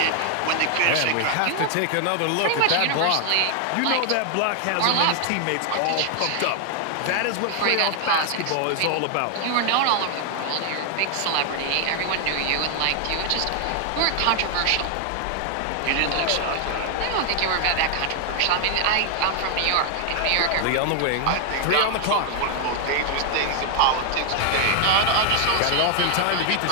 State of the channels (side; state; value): both; different; correlation 0.00